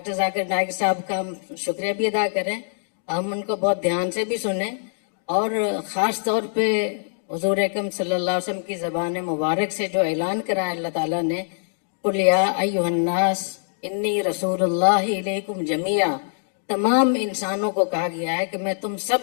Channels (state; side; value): silent; right; digital silence